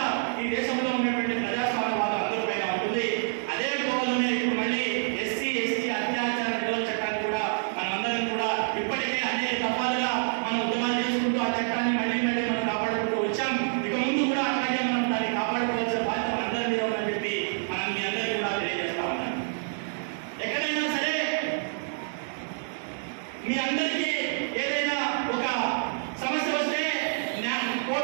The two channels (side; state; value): left; silent; digital silence